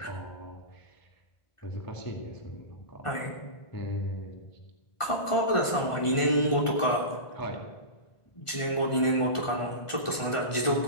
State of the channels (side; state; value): right; late; 1.5 ms